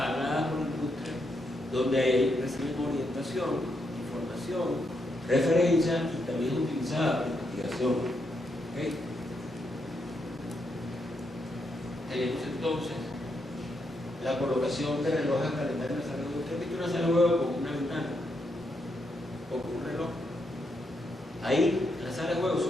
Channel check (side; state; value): both; normal; correlation 0.80